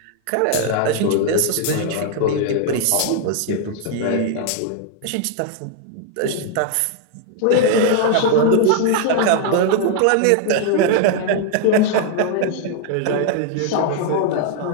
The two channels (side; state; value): both; different; correlation 0.00